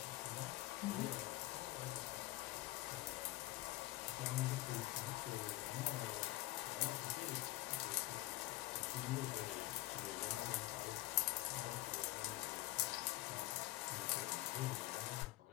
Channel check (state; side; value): quieter; right; 18.3 dB